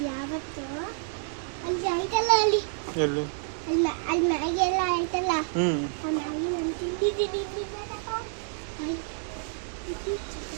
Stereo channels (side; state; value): left; silent; digital silence